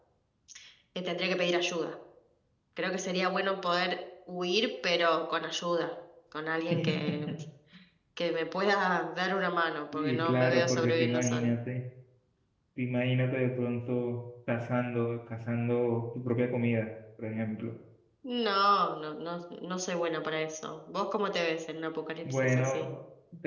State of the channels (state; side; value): identical; both; correlation 1.00